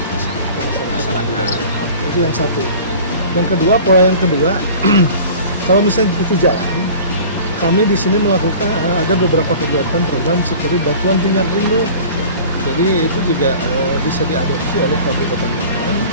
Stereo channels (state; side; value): inverted; both; correlation -0.42